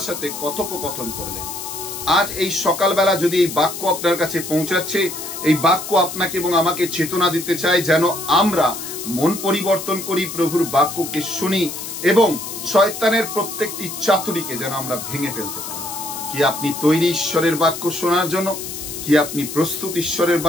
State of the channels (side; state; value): left; noise; hiss, 8 dB below the sound